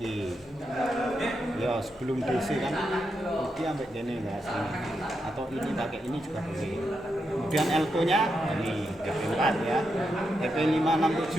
ya sebelum DC kan ini sampai gini enggak sini, atau ini pakai ini juga boleh. Kemudian L2 nya ini TP4 ya,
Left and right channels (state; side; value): normal; both; correlation 0.84